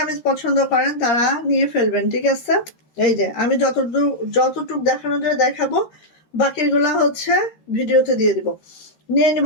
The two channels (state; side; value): late; right; 13 ms